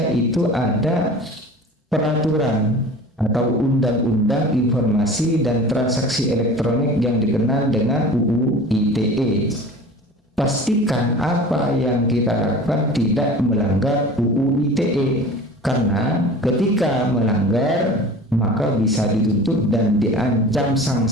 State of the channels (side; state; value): both; normal; correlation 0.39